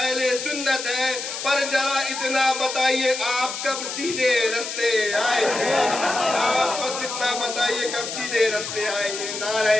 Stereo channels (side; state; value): left; noise; hiss, 6 dB below the sound